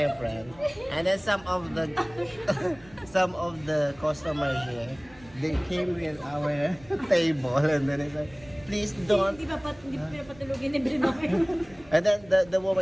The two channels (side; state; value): right; noise; rumble, 24 dB below the sound